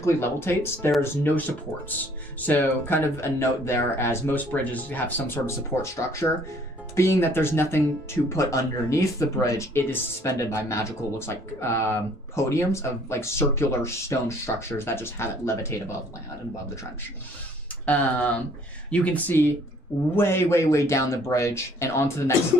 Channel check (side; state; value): both; normal; correlation 0.59